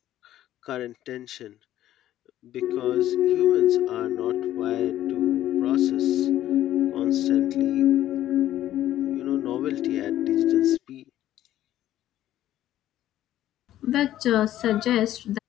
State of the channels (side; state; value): right; quieter; 12.9 dB